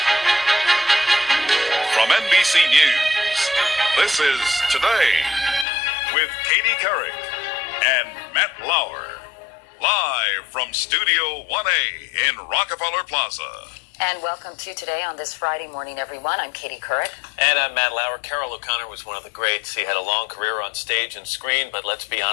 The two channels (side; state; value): right; drops out; at 5.7 s